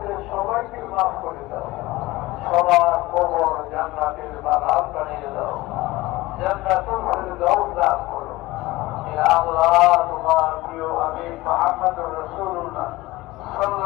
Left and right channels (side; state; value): right; quieter; 19.3 dB